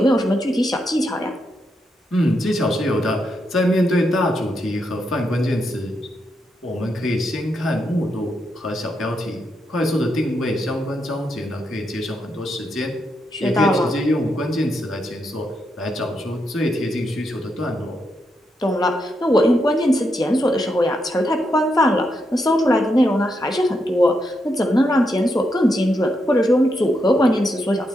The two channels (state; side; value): normal; both; correlation 0.82